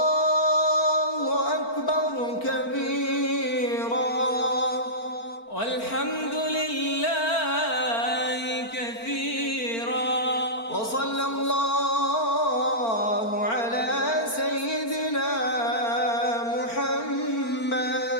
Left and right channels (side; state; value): right; late; 4.4 ms